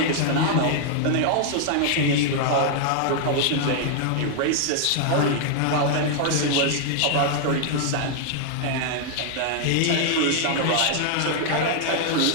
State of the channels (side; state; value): both; different; correlation -0.01